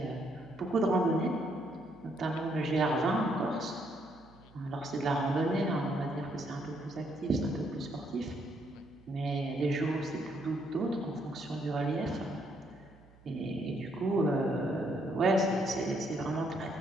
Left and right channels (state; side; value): noise; right; hum, 25 dB below the sound